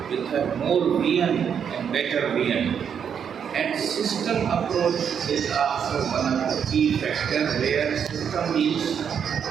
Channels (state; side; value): quieter; left; 7.7 dB